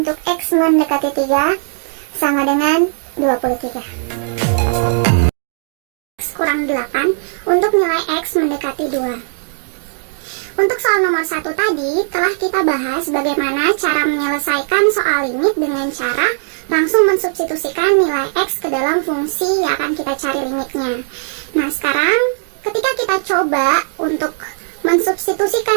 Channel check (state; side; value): silent; left; digital silence